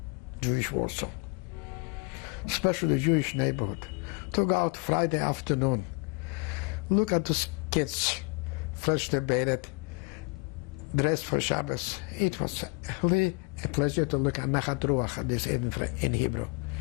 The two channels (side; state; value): right; quieter; 29.9 dB